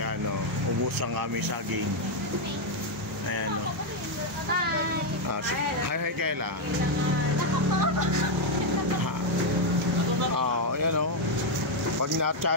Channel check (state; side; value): normal; both; correlation 0.01